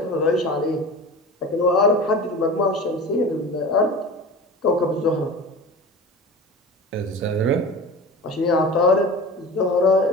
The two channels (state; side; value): normal; both; correlation 0.34